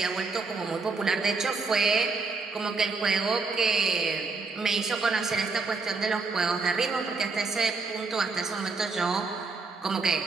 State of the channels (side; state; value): left; quieter; 4.2 dB